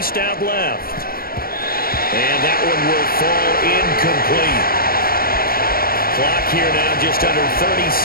out left. And that one will fall incomplete. Clock here now just under 30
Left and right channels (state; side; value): late; right; 0.43 ms